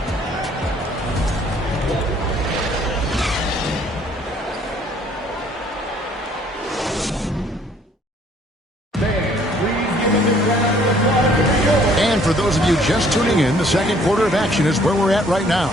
For those of you just tuning in, the second quarter of action is where we're at right now.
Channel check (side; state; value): both; normal; correlation 0.60